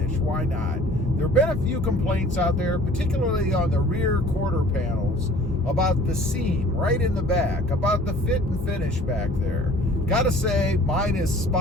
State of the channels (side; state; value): both; normal; correlation 0.51